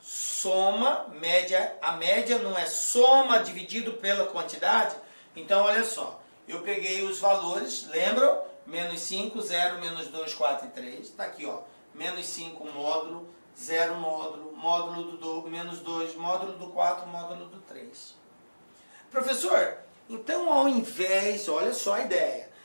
Soma, média. A média não é soma dividido pela quantidade? Então, olha só. Eu peguei os valores, lembram? Menos 5, 0, menos 2, 4 e 3. Está aqui, ó. Menos 5, módulo. 0, módulo. Módulo do menos 2, módulo do 4, módulo do 3. Professor, então ao invés, olha só a ideia.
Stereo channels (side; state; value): both; inverted; correlation -1.00